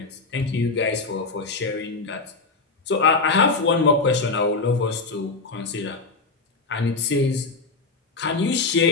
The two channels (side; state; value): right; quieter; 3.9 dB